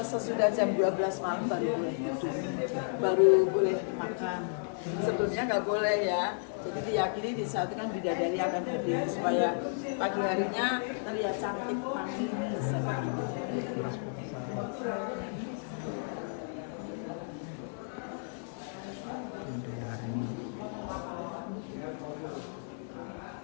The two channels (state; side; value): silent; right; digital silence